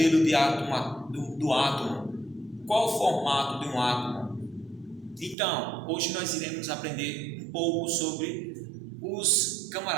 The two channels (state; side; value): drops out; left; at 5.4 s